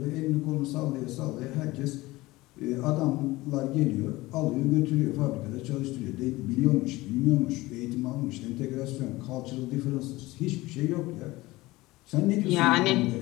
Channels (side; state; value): right; quieter; 19.7 dB